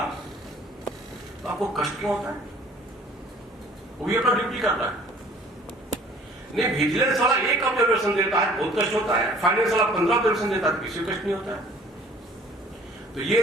तो आपको कष्ट क्यों होता है? वो भी अपना ड्यूटी कर रहा है। नहीं, विजिलेंस वाला एक ऑब्जर्वेशन देता है, बहुत कष्ट होता है। फाइनेंस वाला 15 ऑब्जर्वेशन देता है, किसी को कष्ट नहीं होता है। तो ये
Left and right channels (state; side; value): normal; both; correlation 0.53